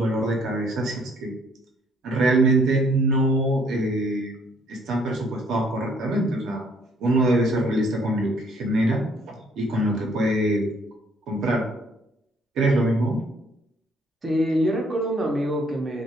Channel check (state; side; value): normal; both; correlation 0.64